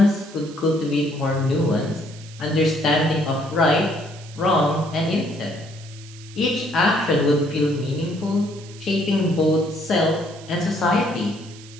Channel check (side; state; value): right; noise; hiss, 20 dB below the sound